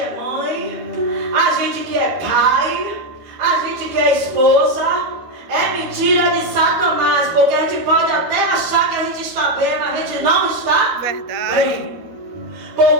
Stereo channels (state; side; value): late; left; 13 ms